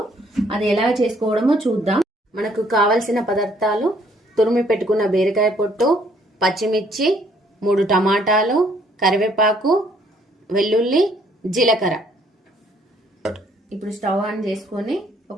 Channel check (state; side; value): normal; both; correlation 0.64